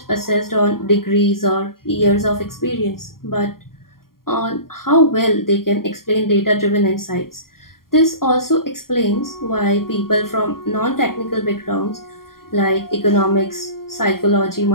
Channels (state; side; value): late; right; 0.92 ms